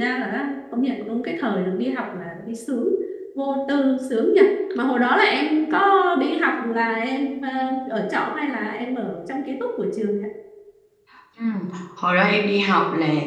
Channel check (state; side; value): identical; both; correlation 1.00